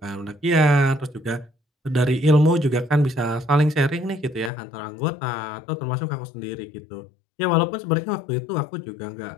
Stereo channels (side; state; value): right; drops out; at 4.5 s